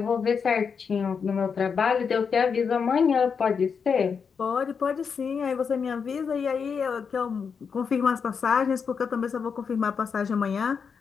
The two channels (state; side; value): quieter; right; 6.1 dB